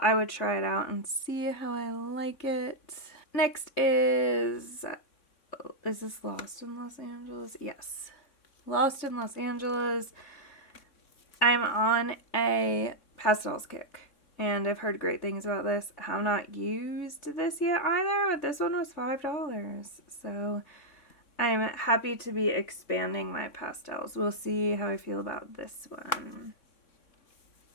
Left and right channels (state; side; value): late; right; 3.6 ms